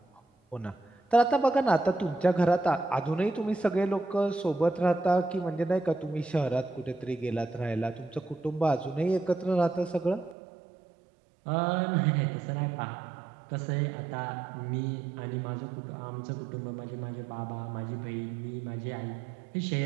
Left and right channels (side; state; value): left; drops out; at 10.4 s